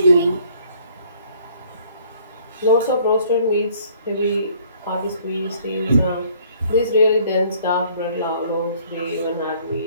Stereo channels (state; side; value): inverted; both; correlation -0.59